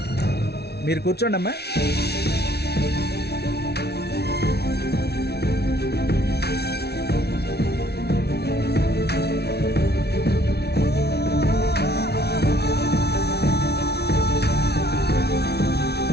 మీరు కూర్చోండి అమ్మా.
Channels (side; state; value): right; late; 0.48 ms